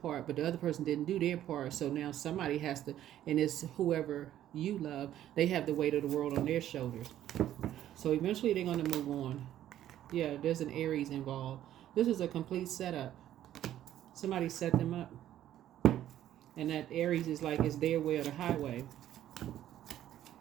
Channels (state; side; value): quieter; left; 12.1 dB